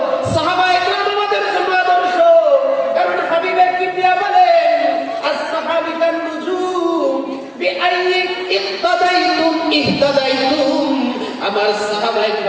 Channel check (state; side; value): identical; both; correlation 1.00